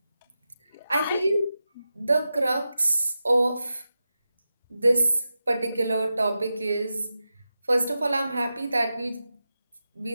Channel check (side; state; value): both; inverted; correlation -0.91